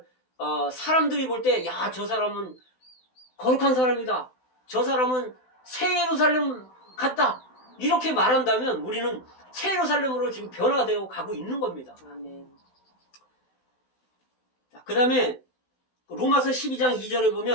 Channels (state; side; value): late; right; 16 ms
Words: 사람들이 볼 때, 야, 저 사람은 거룩한 사람이다, 저 사람은 새 예루살렘 같다, 이렇게 말한다면 우리는 새 예루살렘으로 지금 변화되어 가고 있는 겁니다. 그 다음에 로마서 12장 2절에